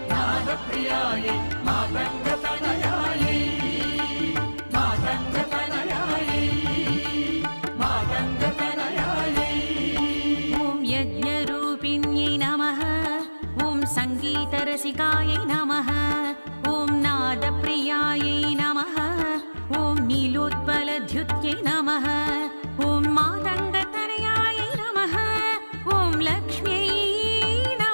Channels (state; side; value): inverted; both; correlation -1.00